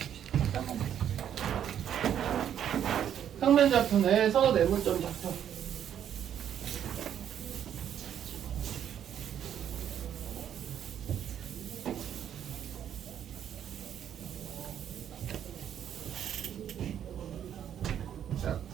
평면 좌표 내에서 내분점 좌표.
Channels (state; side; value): quieter; left; 9.6 dB